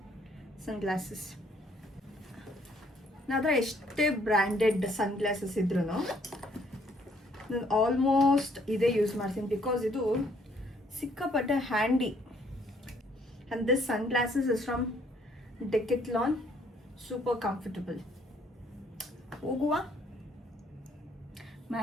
ಸನ್ಗ್ಲಾಸಸ್. ನನ್ನ ಎಷ್ಟೇ ಬ್ರ್ಯಾಂಡೆಡ್ ಸನ್ಗ್ಲಾಸಸ್ ಇದ್ರೂ ನಾನು ಆಲ್ಮೋಸ್ಟ್ ಇದೇ ಯೂಸ್ ಮಾಡ್ತೀನಿ, ಬಿಕಾಸ್ ಇದು ಸಿಕ್ಕಾಪಟ್ಟೆ handy. And this sunglasses is from Decathlon, super comfortable. ಹೋಗುವ, my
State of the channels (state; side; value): normal; both; correlation 0.65